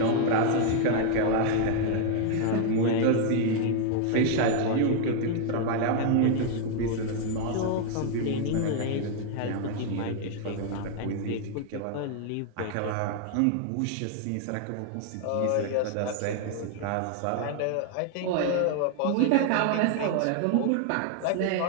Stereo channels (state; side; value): different; both; correlation 0.00